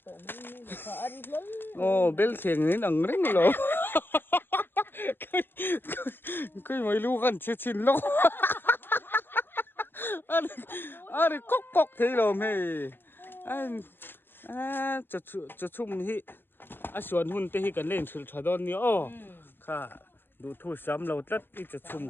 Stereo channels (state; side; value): late; right; 0.10 ms